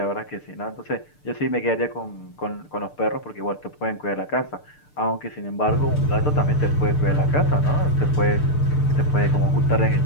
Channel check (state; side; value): late; right; 6.7 ms